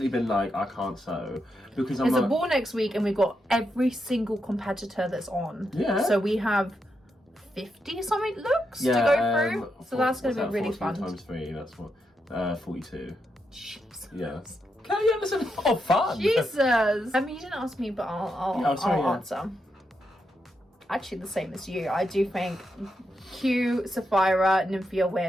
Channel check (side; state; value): both; normal; correlation 0.83